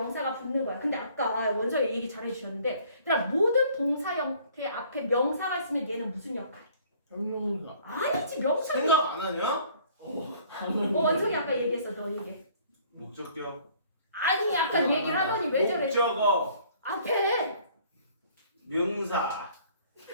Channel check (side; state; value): both; inverted; correlation -0.56